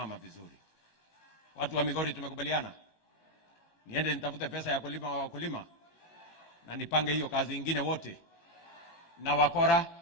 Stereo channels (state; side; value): late; right; 18 ms